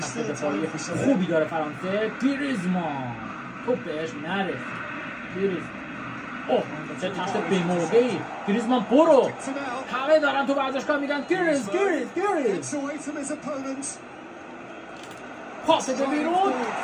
دفاعی خوبی داره فرانسه. گریزمان توپ بهش نرسید. گریزمان اوه چه تشت بی‌موقعی. گریزمان برو، همه دارن تو ورزشگاه میگن گریز پاس به بیرون.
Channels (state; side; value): identical; both; correlation 1.00